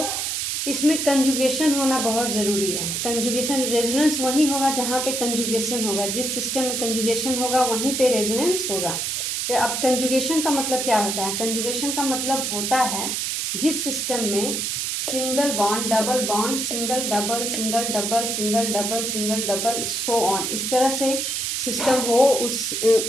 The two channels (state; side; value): noise; right; hiss, 1 dB below the sound